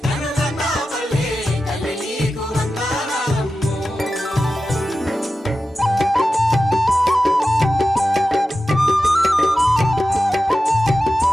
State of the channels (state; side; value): normal; both; correlation 0.93